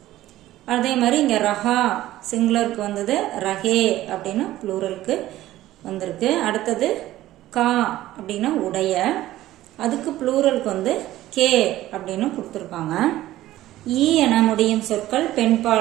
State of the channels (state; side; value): quieter; left; 15.0 dB